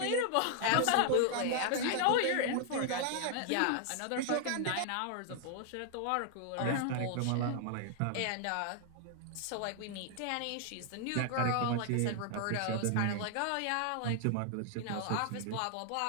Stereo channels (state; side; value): different; both; correlation 0.00